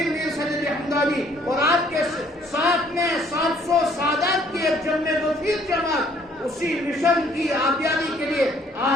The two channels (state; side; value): normal; both; correlation 0.62